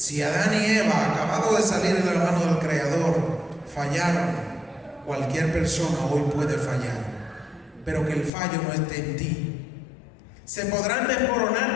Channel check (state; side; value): drops out; right; at 8.3 s